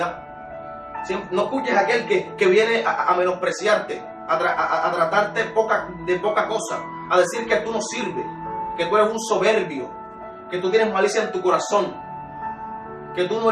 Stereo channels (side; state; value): both; identical; correlation 1.00